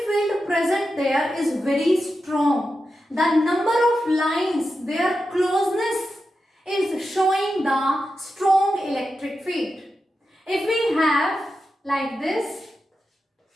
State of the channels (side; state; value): both; normal; correlation 0.90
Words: field present there is very strong. The number of lines, their closeness is showing the strong electric field. If we have like this,